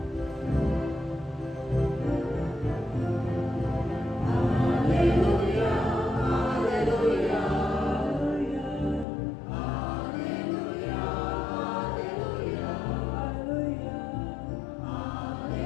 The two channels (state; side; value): drops out; right; at 9.1 s